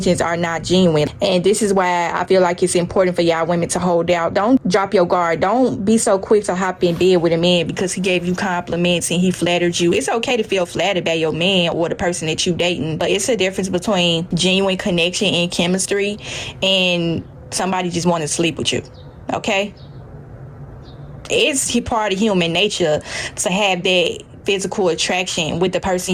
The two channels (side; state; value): both; identical; correlation 1.00